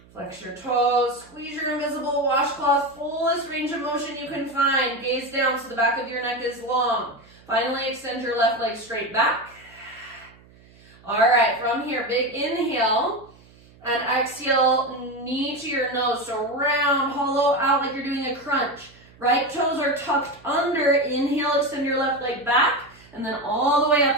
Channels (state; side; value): noise; right; hum, 26 dB below the sound